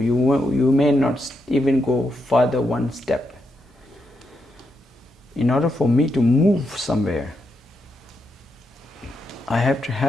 may not even go further one step. In order for me to move somewhere, I have to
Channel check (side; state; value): both; normal; correlation 0.83